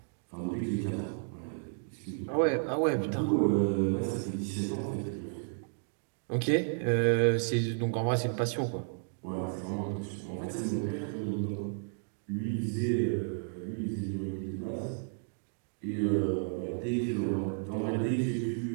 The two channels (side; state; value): left; silent; digital silence